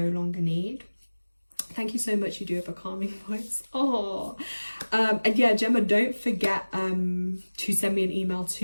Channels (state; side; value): inverted; both; correlation -1.00